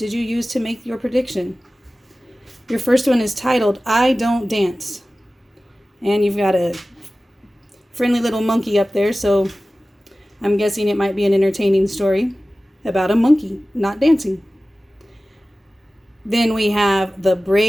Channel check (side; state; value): both; normal; correlation 0.96